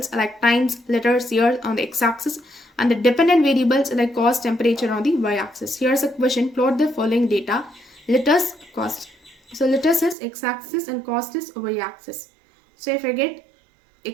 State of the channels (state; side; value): drops out; left; at 10.2 s